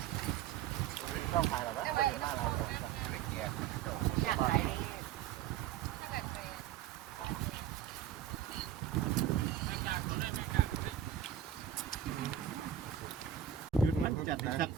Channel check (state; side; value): quieter; left; 10.0 dB